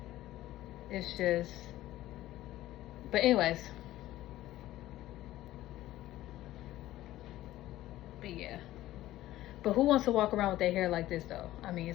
it's just. But anyways. But yeah. But who wants to walk around with their hair like this though? I mean,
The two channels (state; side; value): quieter; right; 15.1 dB